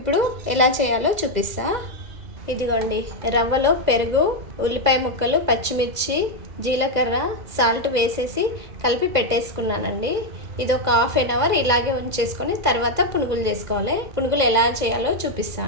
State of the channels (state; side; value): late; left; 2.0 ms